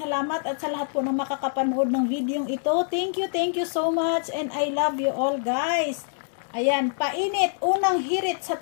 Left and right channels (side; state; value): right; silent; 62 dB below the other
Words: at sa lahat po ng makakapanood ng videong ito. Thank you so much and I love you all guys. Ayan, painit, unang hirit sa